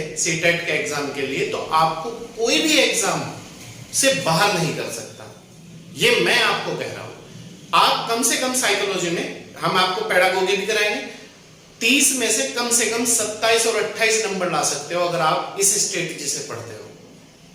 सीटेट के एग्जाम के लिए तो आपको कोई भी एग्जाम से बाहर नहीं कर सकता। ये मैं आपको कह रहा हूं। आप कम से कम साइकोलॉजी में हम आपको पेडागोगी भी कराएंगे, 30 में से कम 27 और 28 नंबर ला सकते हो अगर आप इस स्ट्रेटेजी से पढ़ते हो।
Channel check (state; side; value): identical; both; correlation 1.00